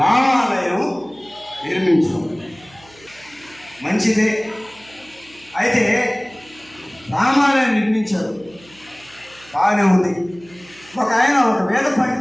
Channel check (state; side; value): noise; right; hum, 25 dB below the sound